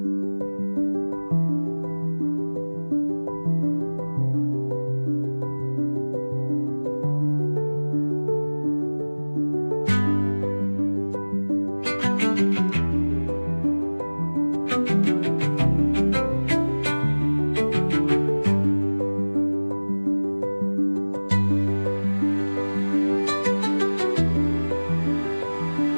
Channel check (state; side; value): inverted; both; correlation -1.00